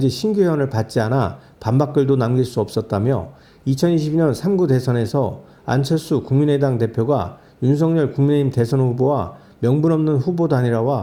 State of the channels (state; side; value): identical; both; correlation 1.00